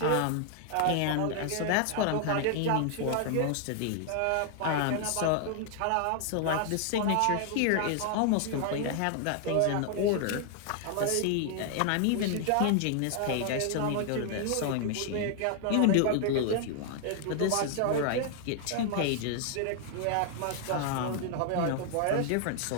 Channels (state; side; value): different; both; correlation 0.00